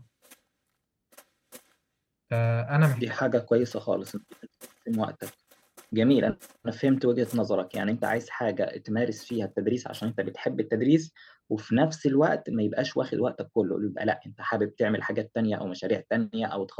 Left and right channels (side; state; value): both; identical; correlation 1.00